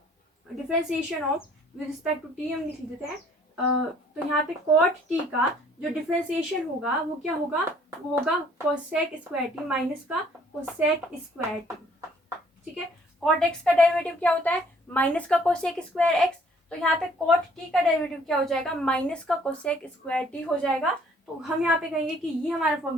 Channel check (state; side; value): normal; both; correlation 0.60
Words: with respect to t हम लिख देते हैं। तो यहाँ पे कॉट टी का जो डिफरेंशिएशन होगा वो क्या होगा? वो होगा कोसेक स्क्वायर टी माइनस का कोसेक स्क्वायर टी। ठीक है, कॉट एक्स का डेरिवेटिव क्या होता है? माइनस का कोसेक स्क्वायर एक्स। तो यहाँ पे कॉट टी का डेरिवेटिव क्या हो जाएगा? माइनस का कोसेक स्क्वायर टी हो जाएगा। तो हम यहाँ पे कहेंगे कि ये हमारा